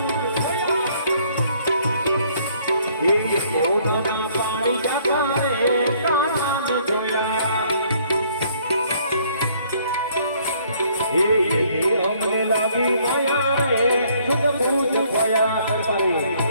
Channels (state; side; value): inverted; both; correlation -0.63